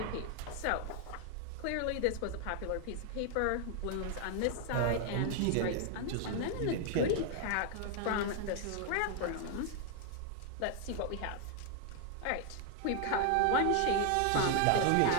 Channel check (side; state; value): both; different; correlation 0.00